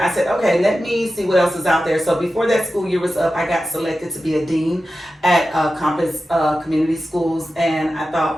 I said, okay, let me see what else is out there. So before that school year was up, I got selected to be a dean at Compass Community Schools. And I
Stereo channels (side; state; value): both; normal; correlation 0.93